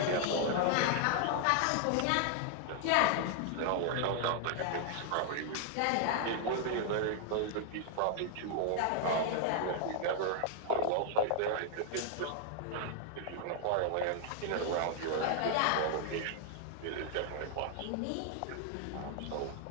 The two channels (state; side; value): different; both; correlation 0.00